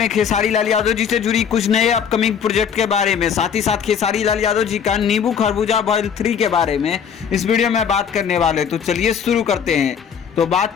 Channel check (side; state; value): right; quieter; 7.6 dB